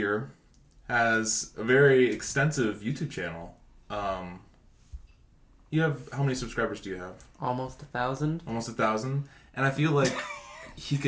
has a very extensive YouTube channel. You have, how many subscribers do you have? almost 1,000. Almost 1,000. And I feel like he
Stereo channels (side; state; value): both; identical; correlation 1.00